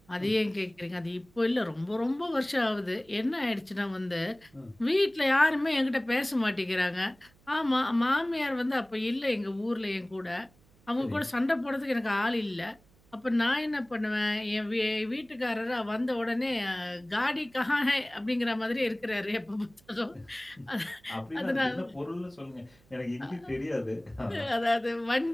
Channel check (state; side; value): noise; right; hum, 30 dB below the sound